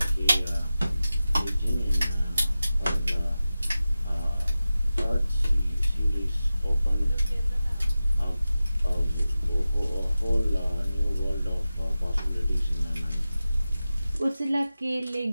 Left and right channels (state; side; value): inverted; both; correlation -0.95